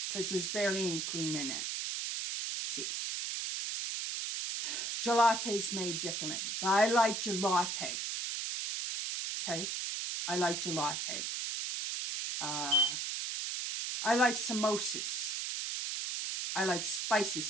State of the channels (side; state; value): right; noise; hiss, 2 dB below the sound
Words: because there's barely any cream in it. See, gelati is made differently, but I like gelati. Okay, I like gelati. I like samosas. I like spicy